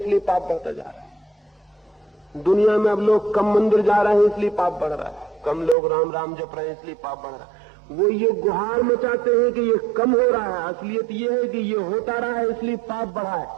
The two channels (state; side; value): drops out; left; at 5.8 s